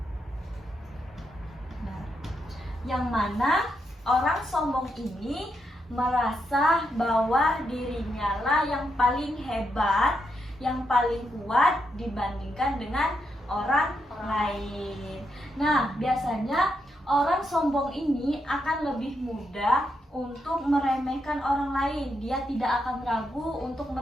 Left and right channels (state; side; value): normal; both; correlation 0.81